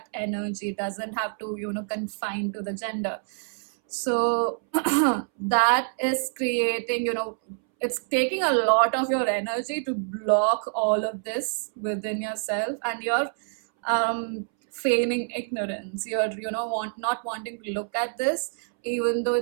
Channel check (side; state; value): left; silent; 61 dB below the other